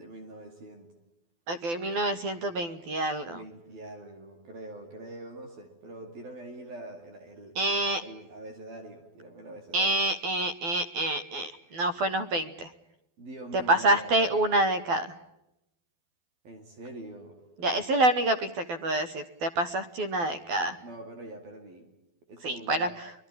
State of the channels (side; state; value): left; late; 12 ms